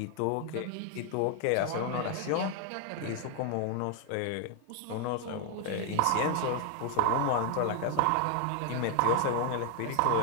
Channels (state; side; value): different; both; correlation 0.00